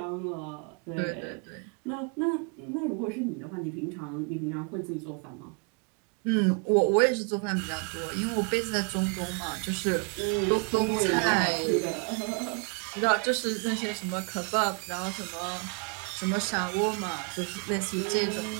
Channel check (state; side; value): quieter; left; 37.5 dB